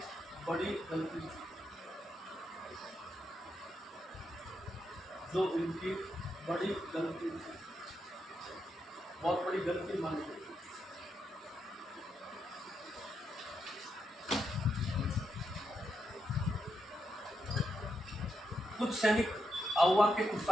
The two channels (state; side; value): normal; both; correlation 0.82